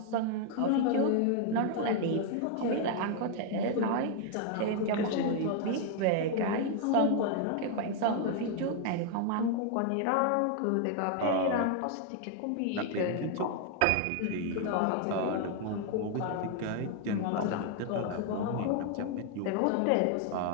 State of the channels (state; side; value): different; both; correlation 0.01